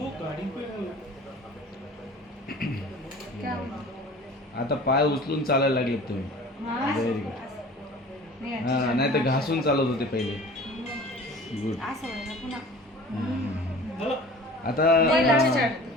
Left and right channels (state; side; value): normal; both; correlation 0.43